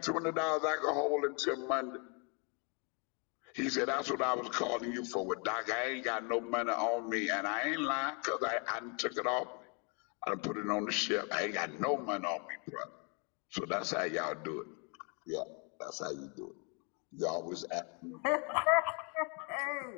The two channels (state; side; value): quieter; right; 35.1 dB